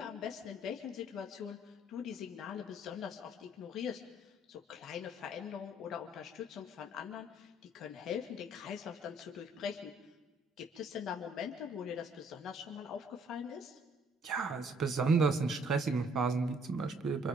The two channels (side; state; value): both; normal; correlation 0.63